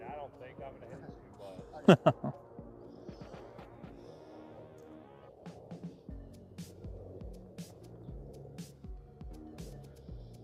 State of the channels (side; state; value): both; identical; correlation 1.00